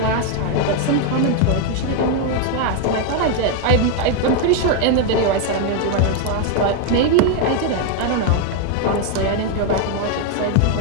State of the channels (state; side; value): different; both; correlation 0.01